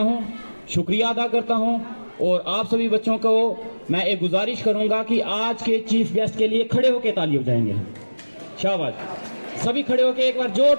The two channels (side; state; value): both; inverted; correlation -1.00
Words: शुक्रिया अदा करता हूँ, और आप सभी बच्चों को मैं एक गुजारिश करूंगा कि आज के चीफ गेस्ट के लिए खड़े होकर ताली बजाएंगे। शाबाश, सभी खड़े होकर एक बार